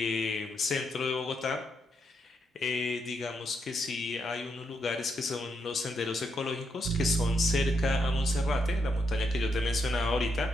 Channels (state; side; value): normal; both; correlation 0.80